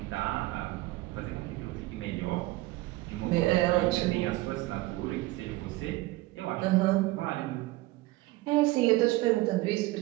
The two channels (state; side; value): quieter; left; 19.1 dB